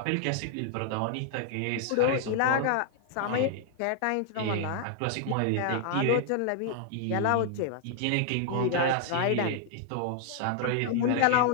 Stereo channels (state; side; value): different; both; correlation 0.00